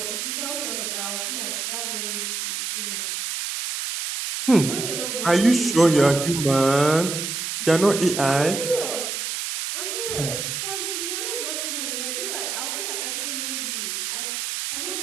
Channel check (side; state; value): right; noise; hiss, 3 dB below the sound